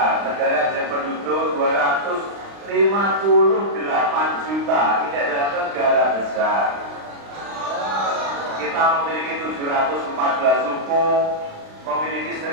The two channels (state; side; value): late; left; 35 ms